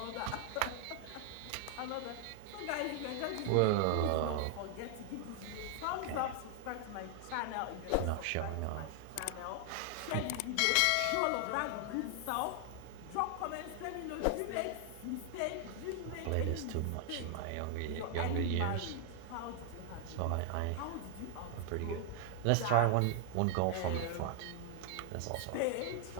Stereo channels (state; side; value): different; both; correlation 0.00